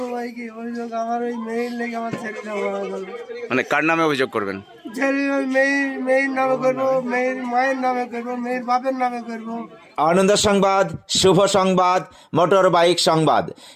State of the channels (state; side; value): identical; both; correlation 1.00